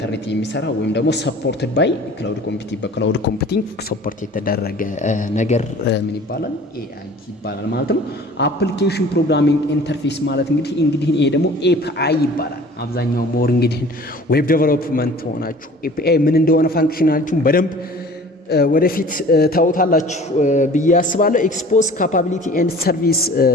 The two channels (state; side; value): normal; both; correlation 0.46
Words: የሚሰራ ወይም ደግሞ ሰፖርትድ ባይ ክላውድ ኮምፒውቲንግ በክላውድ ኮምፒውቲንግ ሰፖርት የተደረገ ነገር ምን ይባላል? ኤአይ ይባላል ማለት ነው። አፕሊኬሽን ፕሮግራሚንግ ኢንተርፌስ ማለት እንግዲህ ይሄ ደግሞ ኤፒአይ ይባላል። አብዛኛው ሞር እንግዲህ ዌብ ዴቨሎፕመንት ሆናችሁ ኤፒአይ ምን እንደሆነ ፋንክሽናሊቲውን በደንብ ወደፊት ታውታላችሁ ብዬ አስባለሁ። ኤክስፖዝ ካፓቢሊቲ ኤንድ ሰርቪስ